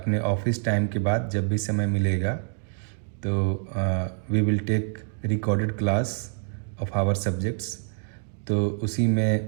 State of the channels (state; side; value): silent; left; digital silence